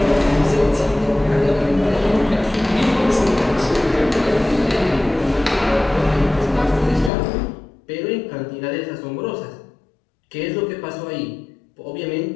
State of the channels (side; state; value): right; drops out; at 7.1 s